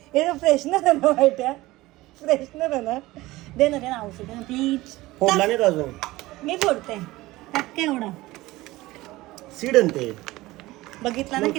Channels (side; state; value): left; quieter; 18.8 dB